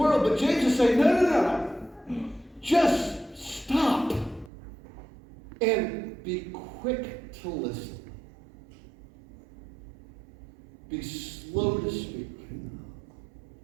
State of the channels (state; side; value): drops out; left; at 4.5 s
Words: But James is saying, no. Just stop and be quick to listen. Be slow to speak.